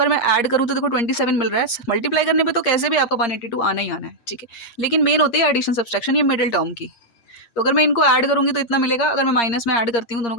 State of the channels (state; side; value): late; right; 7.9 ms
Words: मैं ऐड करूँ तो देखो 27 मिल रहा है, मल्टीप्लाई करने पे तो कैसे भी आपका 182 आना ही आना है, ठीक है, लेकिन मेन होती है एडिशन सब्सट्रैक्शन, ये मिडिल टर्म की। तो अगर मैं इनको ऐड करूँगी तो इतना मिलेगा, अगर मैं माइनस में ऐड करती हूँ दोनों